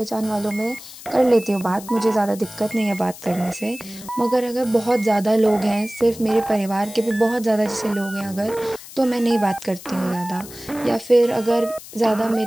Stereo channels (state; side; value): noise; left; hiss, 16 dB below the sound